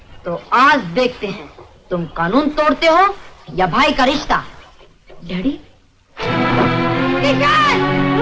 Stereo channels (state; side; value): identical; both; correlation 1.00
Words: तो आज देखते हैं तुम कानून तोड़ते हो या भाई का रिश्ता। डैडी, किशन,